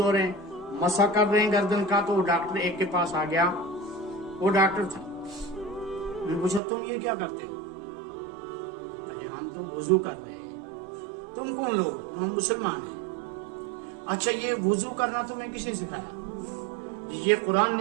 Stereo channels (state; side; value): drops out; left; at 6.6 s